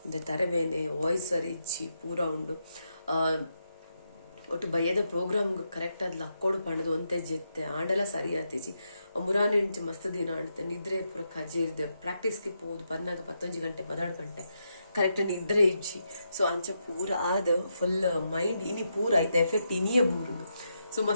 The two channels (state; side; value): inverted; both; correlation -0.83